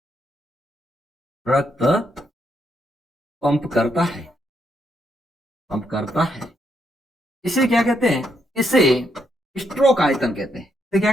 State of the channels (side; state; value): both; normal; correlation 0.77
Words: रक्त पंप करता है। इसे क्या कहते हैं, इसे स्ट्रोक आयतन कहते हैं। इसे क्या